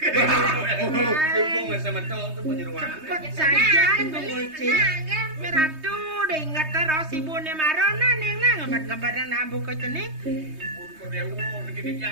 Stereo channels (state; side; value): late; left; 3.2 ms